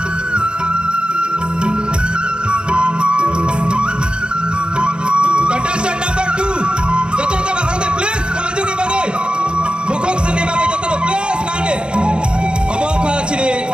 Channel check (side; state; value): left; late; 0.053 ms